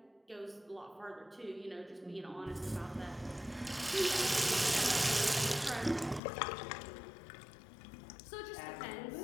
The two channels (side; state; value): right; drops out; at 6.2 s